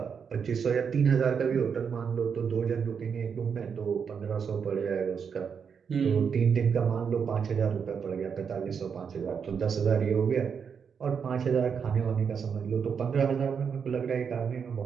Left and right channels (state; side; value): quieter; left; 6.6 dB